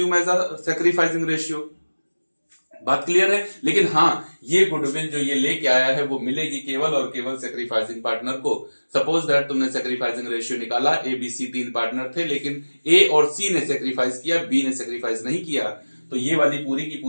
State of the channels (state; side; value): inverted; both; correlation -1.00